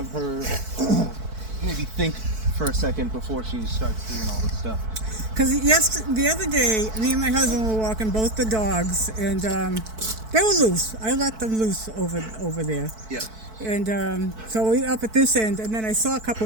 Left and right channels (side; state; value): left; late; 4.6 ms